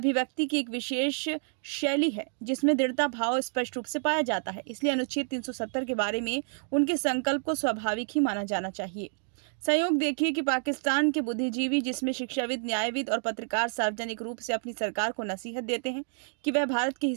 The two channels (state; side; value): silent; left; 57 dB below the other